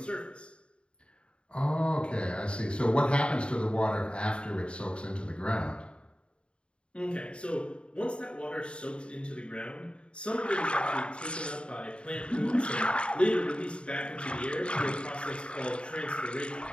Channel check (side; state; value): right; late; 0.055 ms